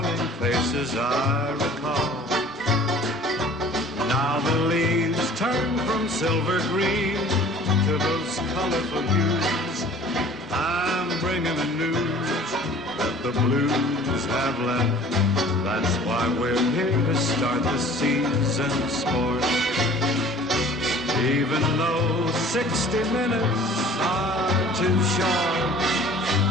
faces I recall. Now the leaves turn from silver green to those colorful hues. I'm bringing the news that the blues have left. That's why we're here to start the season sport. Even though 60 minutes are too short,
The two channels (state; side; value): normal; both; correlation 0.48